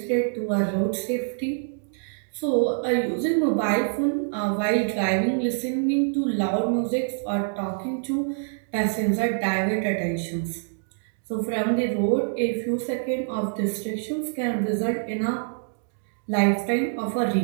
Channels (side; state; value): left; silent; digital silence